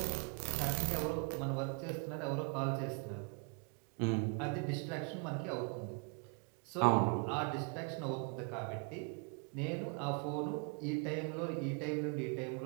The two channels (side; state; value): left; quieter; 36.8 dB